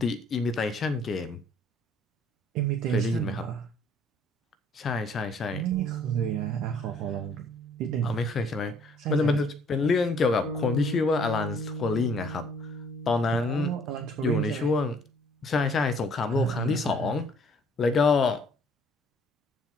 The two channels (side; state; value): both; normal; correlation 0.60